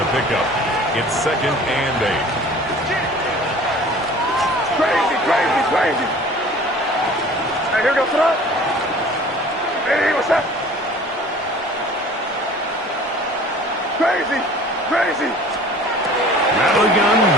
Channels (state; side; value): normal; both; correlation 0.46